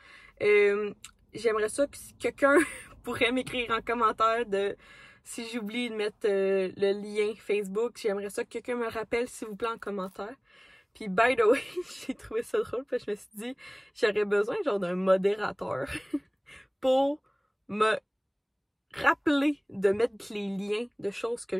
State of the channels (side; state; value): both; identical; correlation 1.00